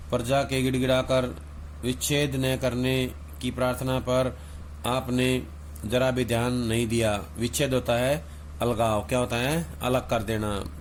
प्रजा के गिड़गिड़ाकर विच्छेद न करने की प्रार्थना पर आपने जरा भी ध्यान नहीं दिया। विच्छेद होता है अलगाव, क्या होता है? अलग कर देना,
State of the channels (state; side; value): identical; both; correlation 1.00